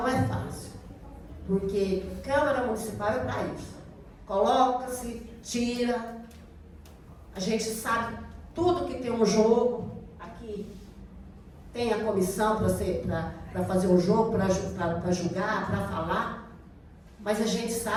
é fácil, porque Câmara Municipal é para isso. Coloca-se, tira, a gente sabe tudo que tem um jogo. Aqui tem a comissão para fazer o jogo, para julgar, para falar, mas a gente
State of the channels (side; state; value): both; identical; correlation 1.00